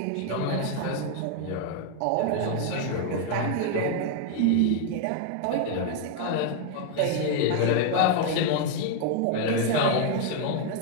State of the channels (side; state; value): both; different; correlation 0.00